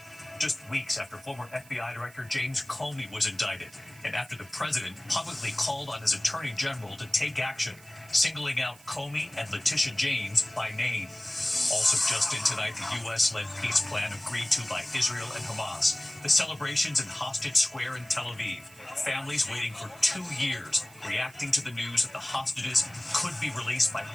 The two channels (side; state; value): right; noise; hiss, 23 dB below the sound